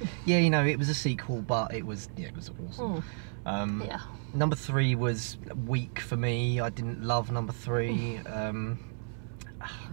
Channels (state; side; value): silent; left; 57 dB below the other